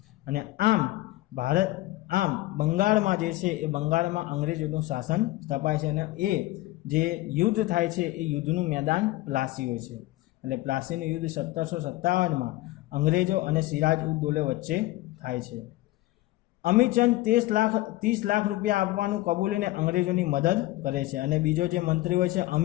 અને આમ બંગાળમાં જે છે એ બંગાળમાં અંગ્રેજોનું શાસન સ્થપાય છે. અને એ જે યુદ્ધ થાય છે એ યુદ્ધનું મેદાન પ્લાસી હોય છે. એટલે પ્લાસીનું યુદ્ધ 1757માં અંગ્રેજો અને સિરાજ ઉદ દૌલે વચ્ચે થાય છે. અમીચંદ 30 લાખ રૂપિયા આપવાનું કબૂલીને અંગ્રેજોની મદદ કરે છે. અને બીજો જે મંત્રી હોય છે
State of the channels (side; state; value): right; quieter; 18.1 dB